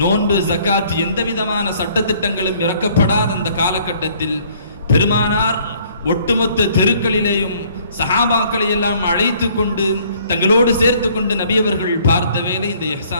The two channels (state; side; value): inverted; both; correlation -0.60